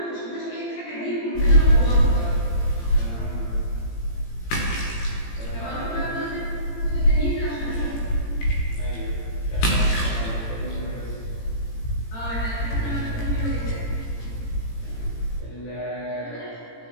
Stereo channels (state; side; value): late; right; 17 ms